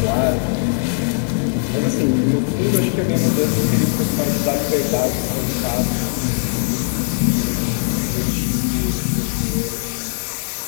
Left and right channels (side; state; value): right; silent; 66 dB below the other